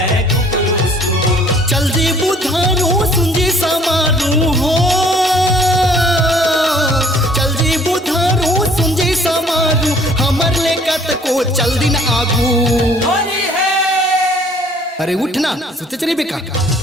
कुकुरुस्कू। चल जी बुधारू सुंजी समारू हो, चल जी बुधारू सुंजी समारू, हमर लेकत को चल दिन आगू। होली है। अरे उठना सोचे चली बेका।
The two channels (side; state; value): both; normal; correlation 0.56